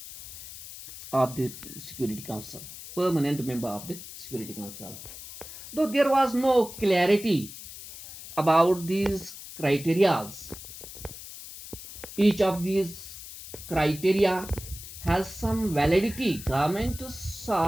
of the Security Council, permanent member of the Security Council. Though there was no clarity about these criterias, each of these criteria has some validity. Government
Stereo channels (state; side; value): noise; left; hiss, 13 dB below the sound